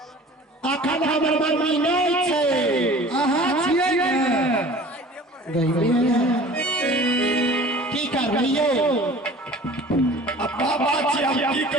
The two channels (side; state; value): both; normal; correlation 0.45